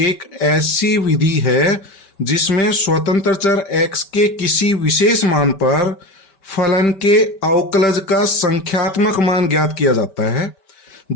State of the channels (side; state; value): right; late; 5.2 ms